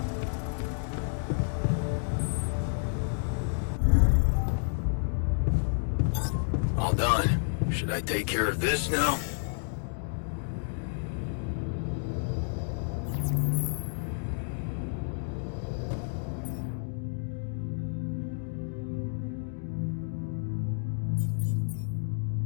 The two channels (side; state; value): right; silent; digital silence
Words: All done. Should I take care of this now?